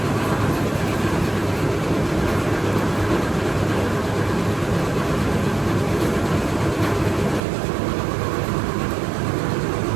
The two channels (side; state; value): left; drops out; at 7.4 s